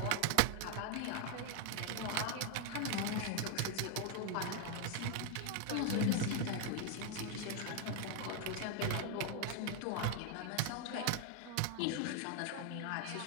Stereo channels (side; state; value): both; different; correlation 0.01